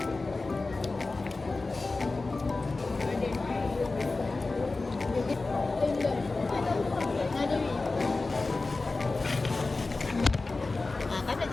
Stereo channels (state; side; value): quieter; right; 3.5 dB